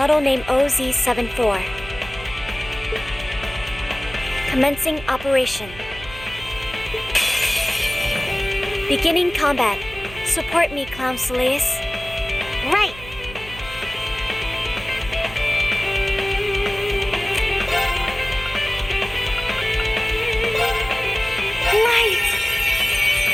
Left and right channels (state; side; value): noise; right; hum, 15 dB below the sound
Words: name OZ74. Commencing operation. Beginning combat. Support me, Clown Soleus. Right! Light!